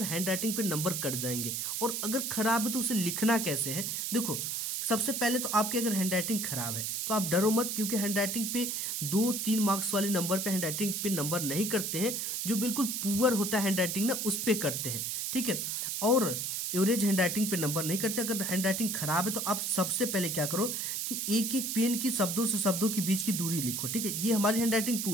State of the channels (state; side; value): noise; right; hiss, 2 dB below the sound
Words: हैंड राइटिंग पे नंबर कट जाएंगे, और अगर खराब है तो उसे लिखना कैसे है। देखो, सबसे पहले तो आपकी अगर हैंड राइटिंग खराब है तो आप डरो मत, क्योंकि हैंड राइटिंग पे 2-3 मार्क्स वाले नंबर पे हैंड राइटिंग पे नंबर नहीं करते हैं। जो बिल्कुल पुअर होता है हैंड राइटिंग ना, उस पे करते हैं, ठीक है। और एवरेज हैंड राइटिंग पे नंबर नहीं करते। अगर हैंड राइटिंग खराब है तो आप सबसे पहले क्या करो कि एक एक पेन की शब्दों से शब्दों के बीच की दूरी लिखो, ठीक है। ये हमारी हैंड राइटिंग